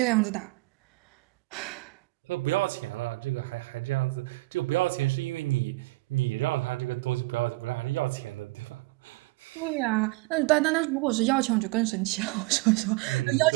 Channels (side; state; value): left; quieter; 22.5 dB